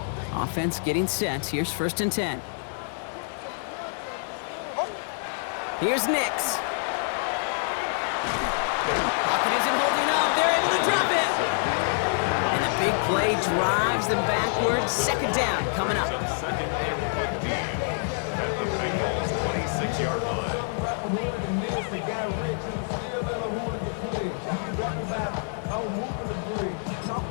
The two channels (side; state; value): right; silent; 60 dB below the other